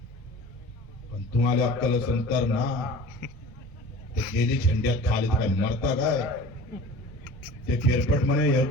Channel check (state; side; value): normal; both; correlation 0.41